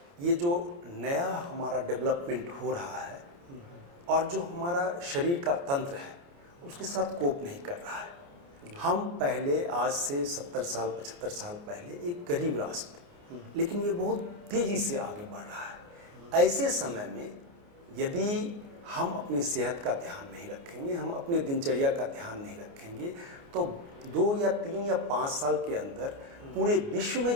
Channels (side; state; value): left; late; 29 ms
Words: ये जो नया हमारा डेवलपमेंट हो रहा है और जो हमारा शरीर का तंत्र है उसके साथ कोप नहीं कर रहा है। हम पहले, आज से 70 साल 75 साल पहले एक गरीब राष्ट्र थे, लेकिन ये बहुत तेज़ी से आगे बढ़ रहा है। ऐसे समय में यदि हम अपनी सेहत का ध्यान नहीं रखेंगे, हम अपने दिनचर्या का ध्यान नहीं रखेंगे तो 2 या 3 या 5 साल के अंदर पूरे विश्व में